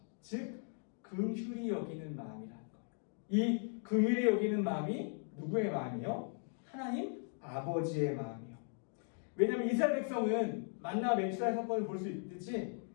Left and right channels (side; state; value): right; silent; 52 dB below the other